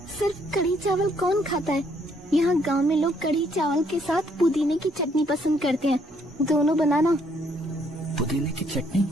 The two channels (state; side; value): normal; both; correlation 0.69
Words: सिर्फ कढ़ी चावल कौन खाता है? यहाँ गांव में लोग कढ़ी चावल के साथ पुदीने की चटनी पसंद करते हैं। दोनों बनाना। पुदीने की चटनी?